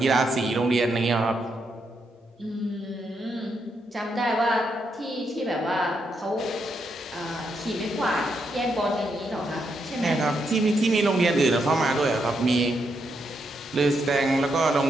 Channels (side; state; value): both; normal; correlation 0.80